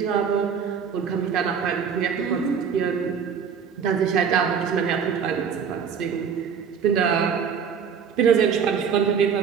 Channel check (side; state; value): left; quieter; 6.9 dB